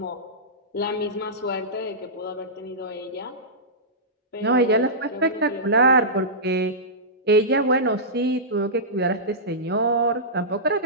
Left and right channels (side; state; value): both; normal; correlation -0.15